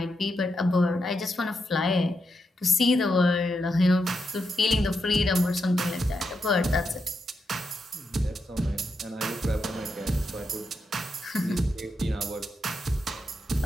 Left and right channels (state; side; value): normal; both; correlation 0.84